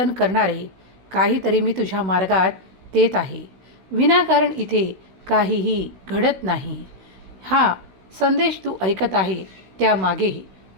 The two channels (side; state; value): left; late; 16 ms